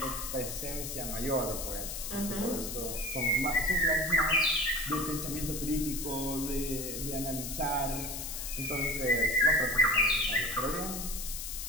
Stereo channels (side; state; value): left; noise; hiss, 6 dB below the sound